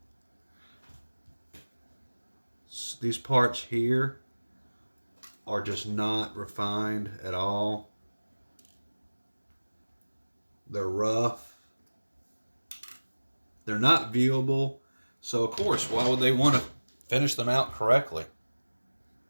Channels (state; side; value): inverted; both; correlation -1.00